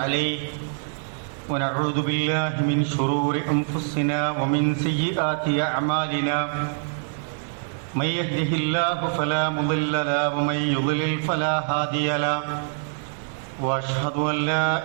عليه ونعوذ بالله من شرور أنفسنا ومن سيئات أعمالنا. من يهده الله فلا مضل له ومن يضلل فلا هادي له. وأشهد أن لا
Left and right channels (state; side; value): silent; left; digital silence